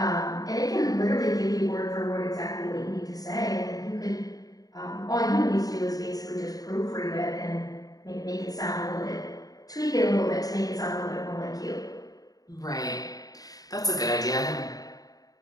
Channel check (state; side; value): late; right; 0.18 ms